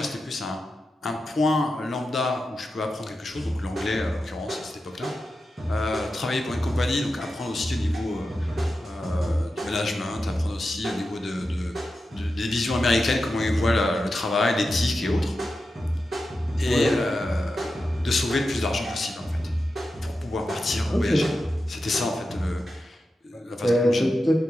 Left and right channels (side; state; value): both; normal; correlation 0.91